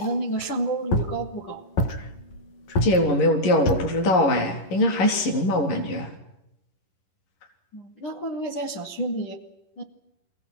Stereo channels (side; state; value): right; late; 11 ms